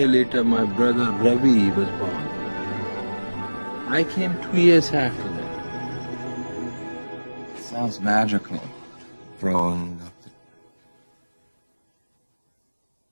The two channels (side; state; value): both; inverted; correlation -1.00